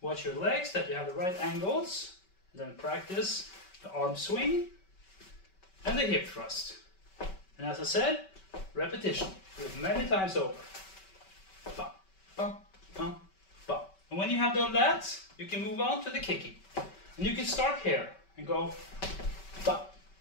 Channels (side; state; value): right; late; 5.2 ms